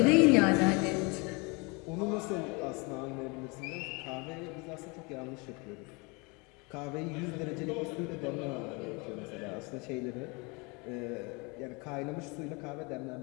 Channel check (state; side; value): quieter; right; 28.9 dB